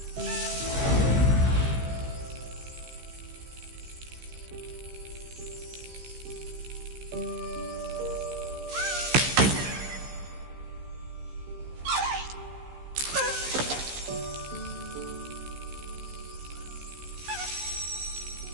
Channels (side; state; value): left; late; 15 ms